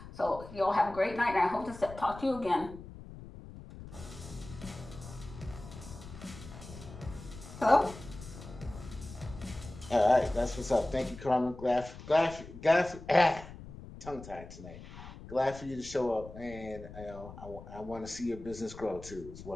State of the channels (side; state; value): left; noise; rumble, 14 dB below the sound